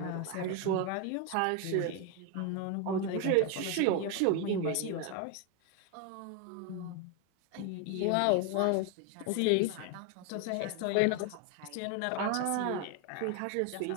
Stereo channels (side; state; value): both; different; correlation 0.01